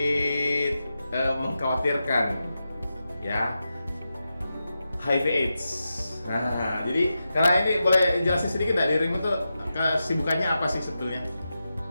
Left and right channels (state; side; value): inverted; both; correlation -0.90